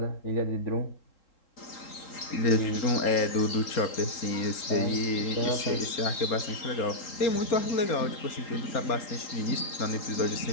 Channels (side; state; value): right; late; 3.7 ms